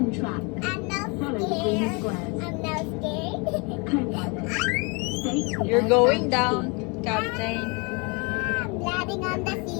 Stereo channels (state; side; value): quieter; right; 30.5 dB